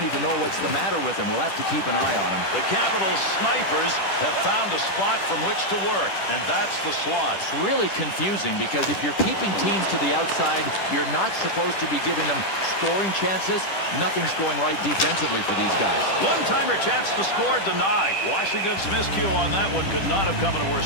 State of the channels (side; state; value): right; late; 10 ms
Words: even know what's the matter with him. We'll have to keep an eye on him. The Capitals snipers have found a spot from which to work, and that's the slot. It's really confusing because if you're keeping teams to the outside, you're not supposed to be giving them scoring chances. Nothing's going right defensively for these guys. One-timer chance to score denied. Washington's miscue on that one could not have come in a worse